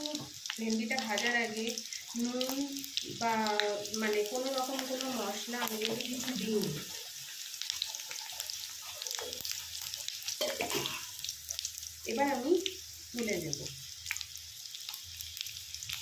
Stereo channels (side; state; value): both; identical; correlation 1.00